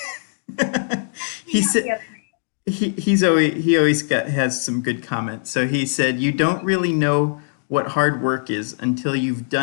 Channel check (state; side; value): silent; right; digital silence